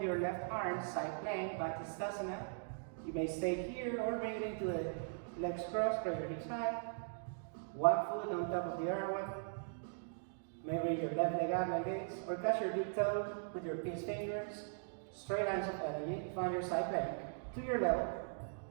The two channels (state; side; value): silent; left; digital silence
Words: your left arm, side plank, back to Stasana. You may stay here or bring it into the legs crossed, press your hips high. One foot on top of the other one. Maybe your left leg up like this, or touch your big toe with your pinch fingers. Straight lines of energy. Find your side plank to your level.